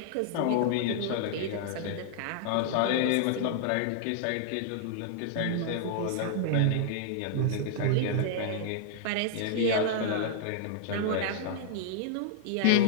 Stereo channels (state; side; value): different; both; correlation -0.01